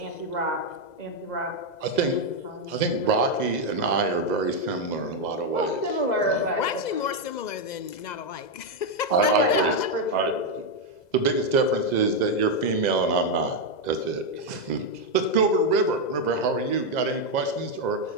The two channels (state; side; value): late; right; 2.0 ms